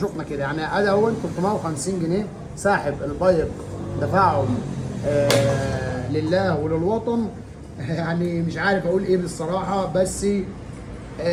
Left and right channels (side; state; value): both; identical; correlation 1.00